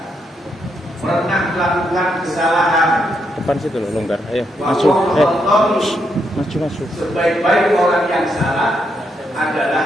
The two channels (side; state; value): both; normal; correlation 0.79